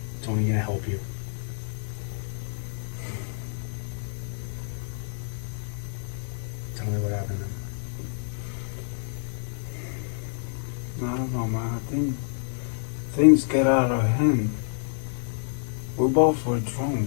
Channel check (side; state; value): right; silent; 59 dB below the other